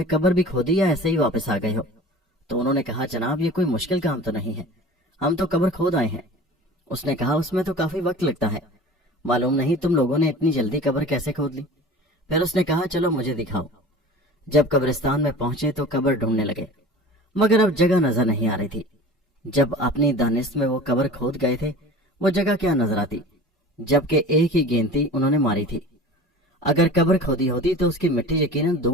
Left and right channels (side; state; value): both; normal; correlation 0.39